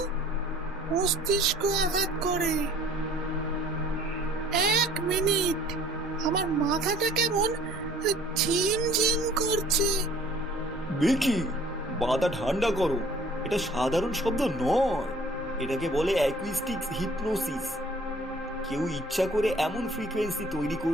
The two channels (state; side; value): normal; both; correlation 0.53